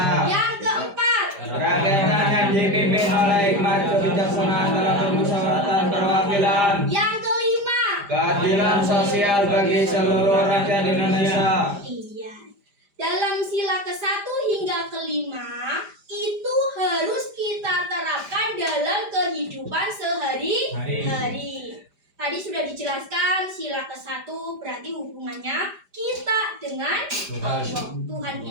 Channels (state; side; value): late; left; 5.0 ms